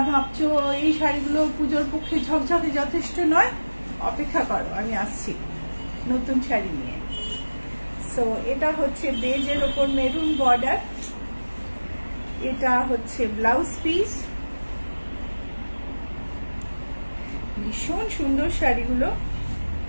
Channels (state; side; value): inverted; both; correlation -1.00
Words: ভাবছো এই শাড়িগুলো পুজোর পক্ষে ঝকঝকে যথেষ্ট নয়, অপেক্ষা করো, আমি আসছি নতুন শাড়ি নিয়ে। সো এটা হচ্ছে বেজের ওপর মেরুন বর্ডার, এটা হচ্ছে ব্লাউজ পিস। ভীষণ সুন্দর শাড়িগুলো।